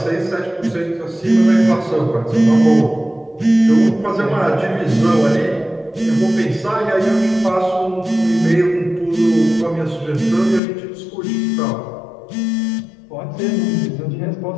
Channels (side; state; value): right; drops out; at 10.6 s